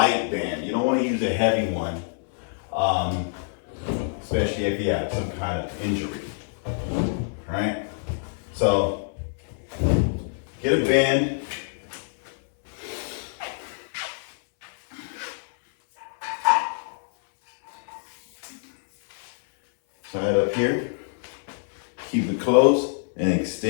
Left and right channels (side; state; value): right; silent; 61 dB below the other